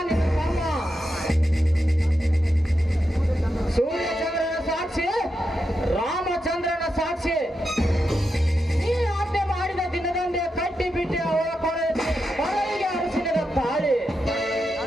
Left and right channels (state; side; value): normal; both; correlation 0.86